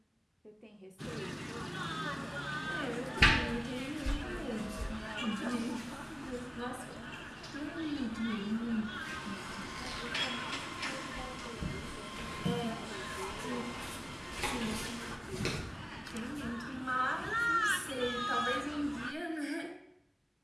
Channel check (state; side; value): identical; both; correlation 1.00